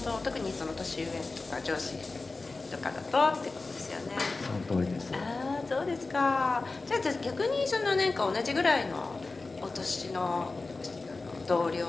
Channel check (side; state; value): right; quieter; 3.6 dB